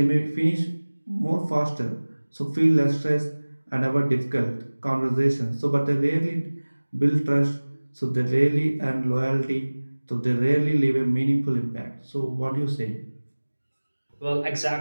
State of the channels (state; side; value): inverted; both; correlation -1.00